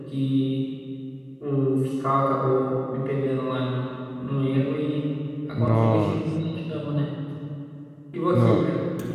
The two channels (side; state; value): both; identical; correlation 1.00